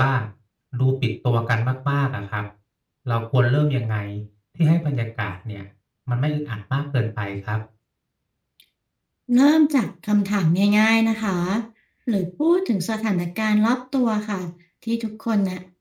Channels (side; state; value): both; identical; correlation 1.00